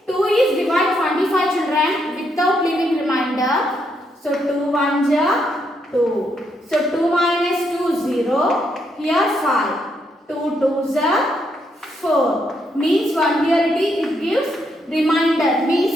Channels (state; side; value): normal; both; correlation 0.77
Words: 2 is divide 25 children. So 2 1s are 2. So 2 minus 2 0. Here 5. 2 2s are 4. Means one here it gives remainder.